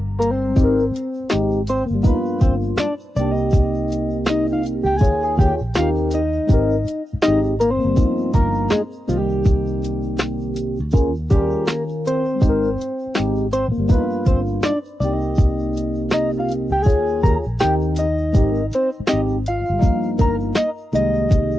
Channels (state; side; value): normal; both; correlation 0.91